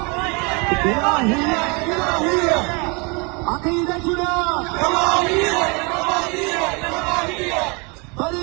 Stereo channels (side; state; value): left; quieter; 30.7 dB